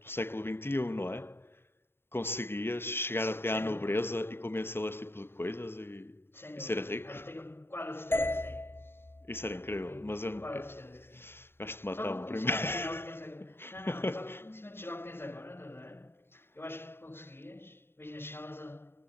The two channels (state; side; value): late; right; 0.11 ms